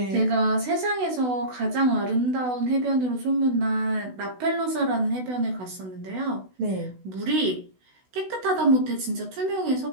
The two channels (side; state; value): left; late; 16 ms